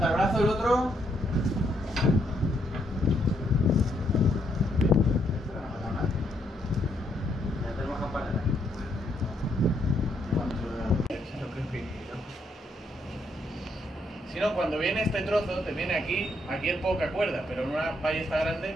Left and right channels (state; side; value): normal; both; correlation 0.74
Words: el brazo, el otro. Ya tenemos campanera. Si no, cuando viene este trozo, te viene aquí, aquí es poca cuerda, pero en una ballesta grande.